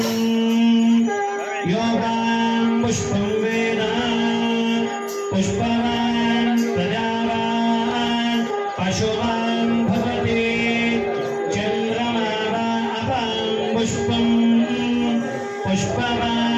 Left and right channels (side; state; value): both; identical; correlation 1.00